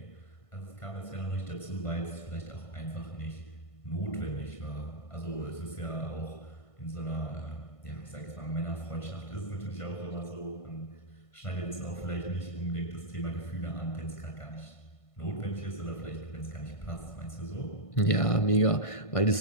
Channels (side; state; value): right; late; 1.5 ms